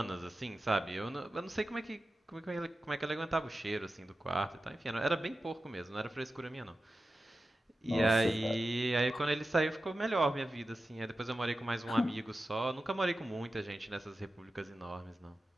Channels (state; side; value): normal; both; correlation 0.93